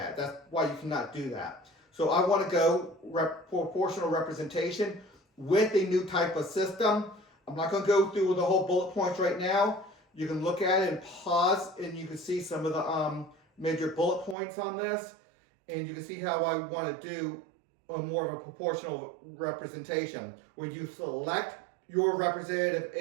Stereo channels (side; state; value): left; drops out; at 14.4 s